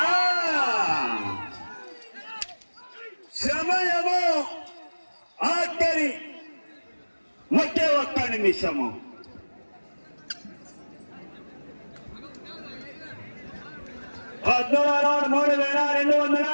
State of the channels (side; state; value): both; inverted; correlation -1.00